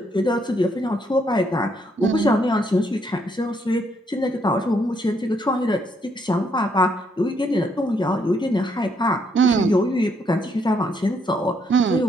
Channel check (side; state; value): both; normal; correlation 0.72